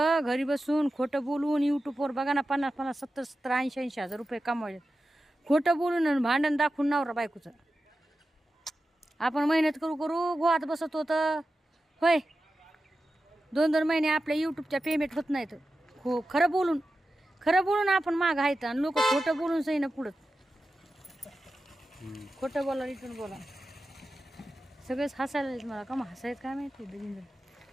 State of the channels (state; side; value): normal; both; correlation 0.92